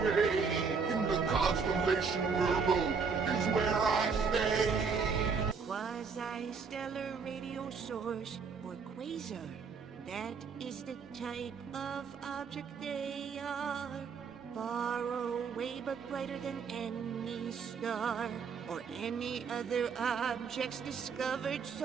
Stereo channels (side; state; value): left; quieter; 5.5 dB